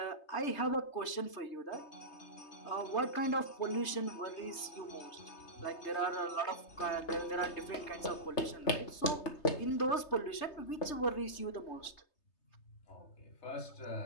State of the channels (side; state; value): right; late; 3.3 ms